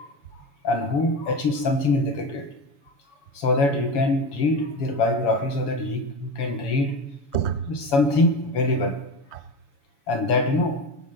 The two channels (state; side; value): late; right; 7.1 ms